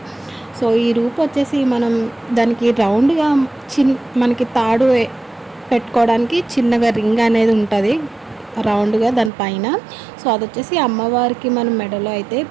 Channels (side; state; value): left; drops out; at 9.3 s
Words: సో ఈ రూప్ వచ్చేసి మనం దానికి రౌండ్గా మనకి తాడు పెట్టుకోవడానికి చిన్నగా రింగ్ అనేది ఉంటుంది రౌండ్గా దానిపైన. సో అది వచ్చేసి అమ్మవారికి మనం మెడలో అయితే